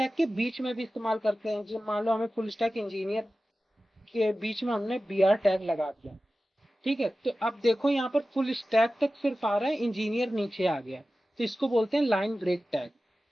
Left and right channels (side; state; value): both; normal; correlation 0.95